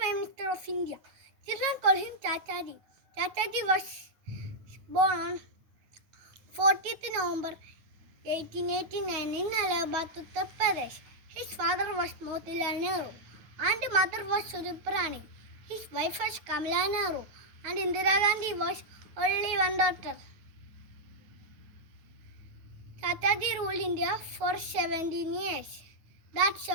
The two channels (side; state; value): left; late; 9.2 ms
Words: Minister of India. Children call him Chachaji. Chachaji was born on 40th November 1889 in Allahabad, Uttar Pradesh. His father was Motilal Nehru and mother was Surupa Rani. His wife was Kamala Nehru and Indira Gandhi was only one daughter. Chachaji ruled India for 17 years. That's